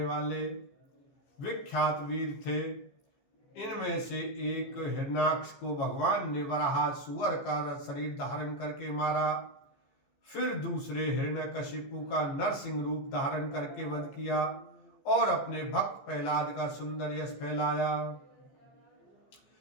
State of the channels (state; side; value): late; right; 14 ms